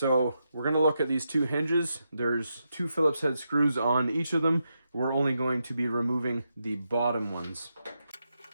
we're going to look at these two hinges. There's two Phillips head screws on each of them. We're only going to be removing the bottom ones.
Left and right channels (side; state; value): both; inverted; correlation -0.85